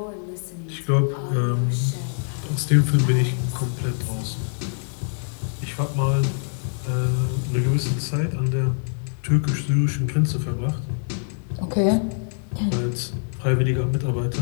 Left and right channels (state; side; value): silent; right; digital silence